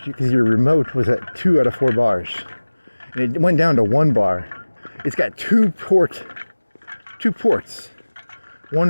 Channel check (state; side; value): inverted; both; correlation -1.00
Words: because your remote was at 2 out of 4 bars. And it went down to 1 bar. It's got two ports. One